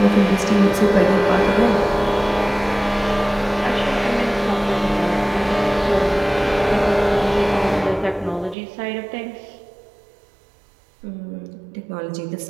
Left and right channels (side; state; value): left; drops out; at 8.6 s